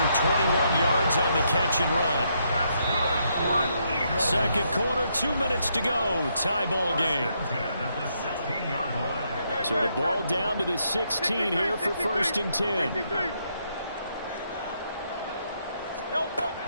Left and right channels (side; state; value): both; inverted; correlation -0.76